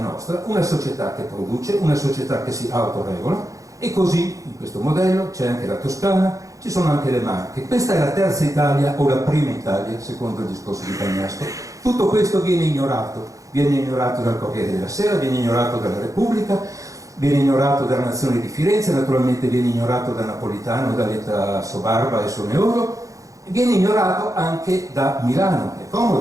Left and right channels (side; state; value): left; late; 0.16 ms